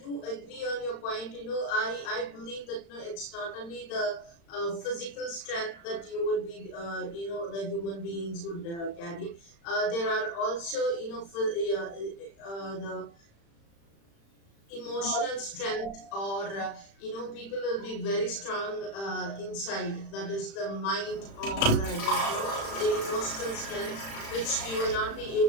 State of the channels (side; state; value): right; late; 35 ms